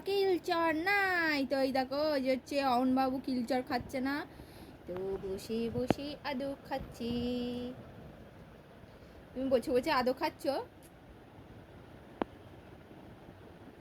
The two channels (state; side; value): identical; both; correlation 1.00